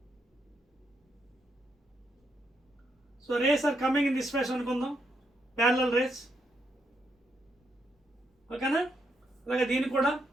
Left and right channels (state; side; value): normal; both; correlation 0.78